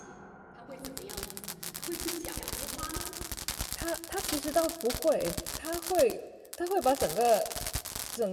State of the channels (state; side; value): identical; both; correlation 1.00